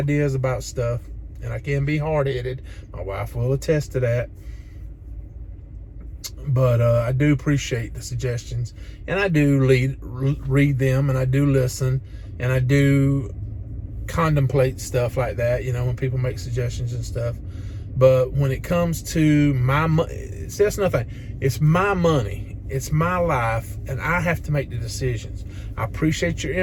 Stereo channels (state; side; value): identical; both; correlation 1.00